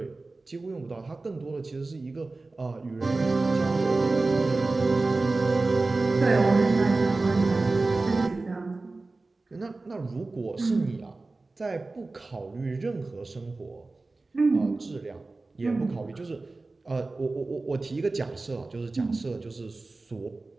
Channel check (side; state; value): left; quieter; 3.4 dB